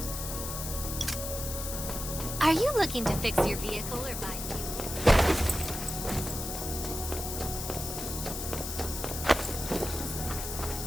Are you looking to fix your vehicle or buy fuel?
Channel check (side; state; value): left; noise; hiss, 6 dB below the sound